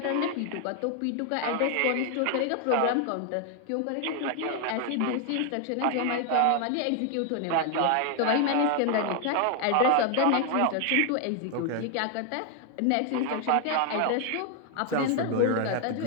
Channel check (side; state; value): both; different; correlation 0.00